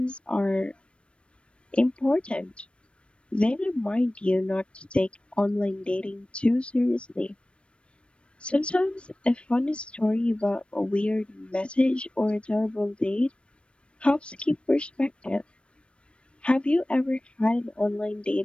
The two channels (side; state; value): right; late; 0.059 ms